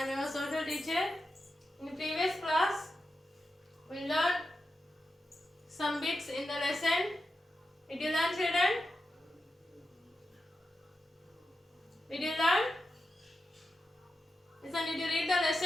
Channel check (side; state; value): both; normal; correlation 0.90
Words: your social teacher. In the previous class, we learned some bits in the lesson. Did you learn, children? Did you learn? Listen, did you read the